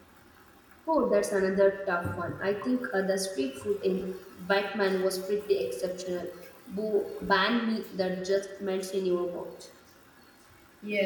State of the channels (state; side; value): identical; both; correlation 1.00